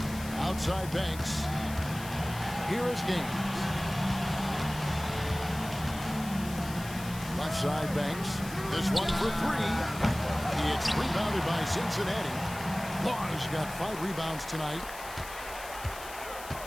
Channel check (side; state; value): left; noise; hiss, 14 dB below the sound